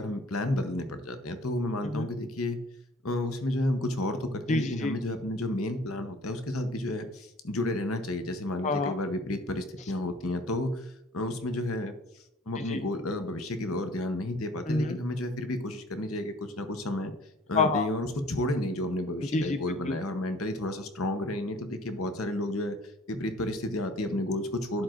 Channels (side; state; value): both; normal; correlation 0.51